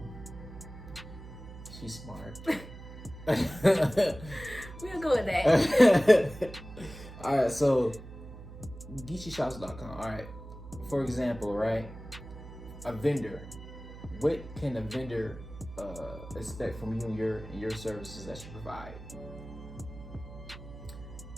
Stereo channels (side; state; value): right; noise; hum, 14 dB below the sound